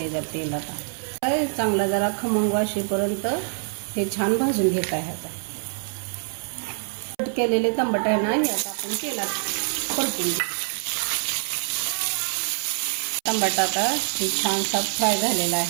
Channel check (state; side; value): silent; left; 62 dB below the other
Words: आहे तेल. आता चांगला जरा खमंग वाशेपर्यंत हे छान भाजून घेत आहे. आता कट केलेले टमाटे आहे ना, हे आता आपण तेलात परतून घेऊ. टमाटा आता हे छानसा फ्राय झालेला